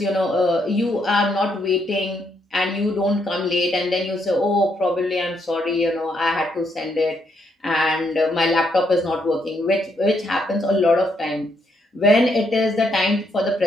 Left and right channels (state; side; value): normal; both; correlation 0.75